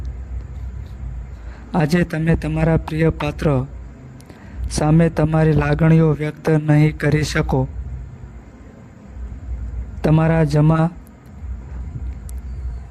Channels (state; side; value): identical; both; correlation 1.00